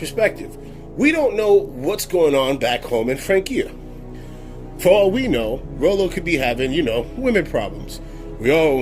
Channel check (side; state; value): both; identical; correlation 1.00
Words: We don't know what's going on back home in Francia. For all we know, Rollo could be having, women problems. We